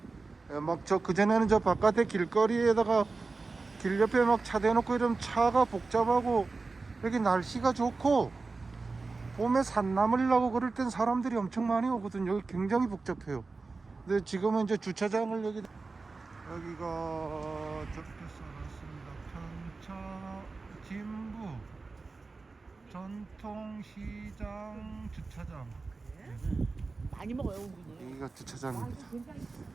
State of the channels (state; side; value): quieter; left; 3.9 dB